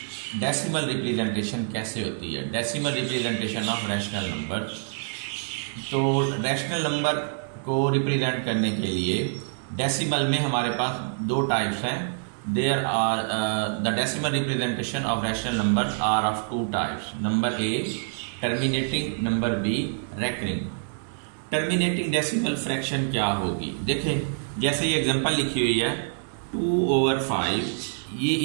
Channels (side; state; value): left; silent; 61 dB below the other